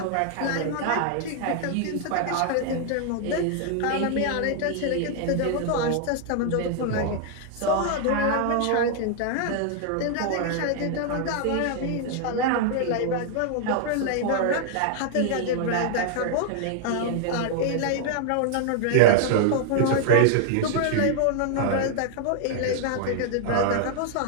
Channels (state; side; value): different; both; correlation 0.00